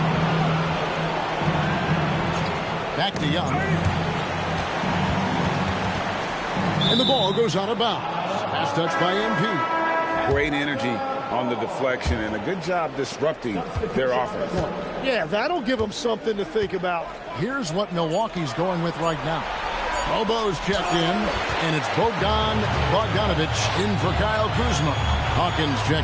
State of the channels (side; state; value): both; identical; correlation 1.00